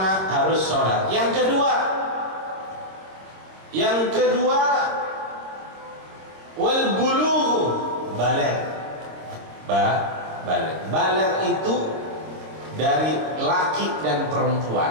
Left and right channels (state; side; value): late; left; 26 ms